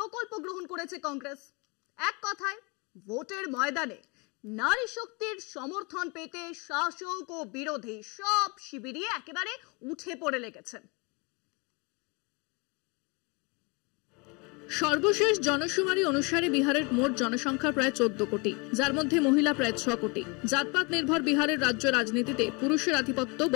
গ্রহণ করেছে কংগ্রেস। এক কথায় ভোটের ময়দানে নারী শক্তির সমর্থন পেতে শাসক ও বিরোধী সব শিবিরই একেবারে উঠে পড়ে লেগেছে। সর্বশেষ জনশুমারি অনুসারে বিহারের মোট জনসংখ্যা প্রায় 14 কোটি, যার মধ্যে মহিলা প্রায় 6 কোটি। জাতপাত নির্ভর বিহারের রাজ্য রাজনীতিতে পুরুষের আধিপত্য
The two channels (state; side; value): quieter; right; 29.7 dB